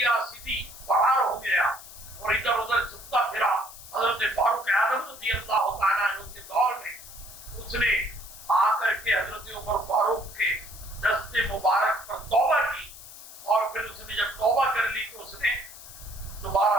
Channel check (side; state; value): left; noise; hiss, 16 dB below the sound